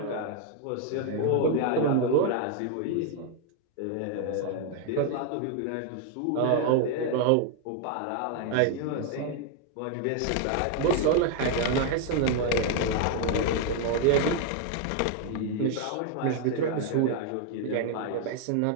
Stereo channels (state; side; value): different; both; correlation 0.00